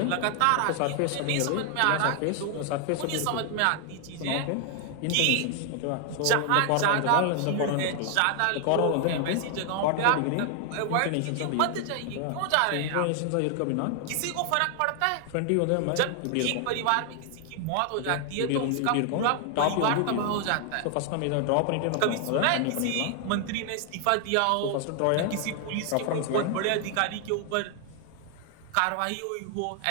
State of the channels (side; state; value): both; different; correlation 0.00